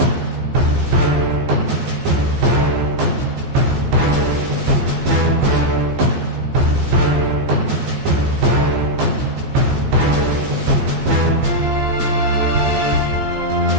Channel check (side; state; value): left; late; 14 ms